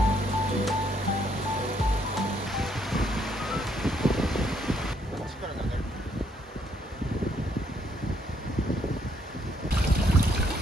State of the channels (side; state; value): both; normal; correlation 0.70